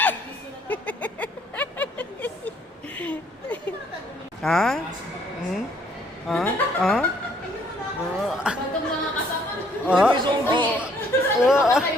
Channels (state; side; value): normal; both; correlation 0.64